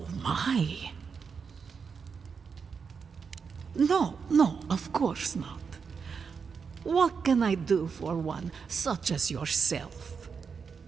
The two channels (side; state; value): left; quieter; 5.8 dB